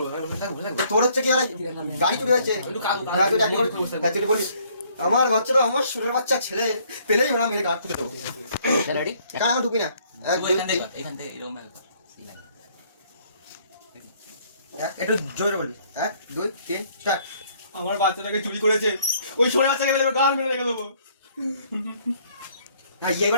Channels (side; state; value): both; inverted; correlation -0.63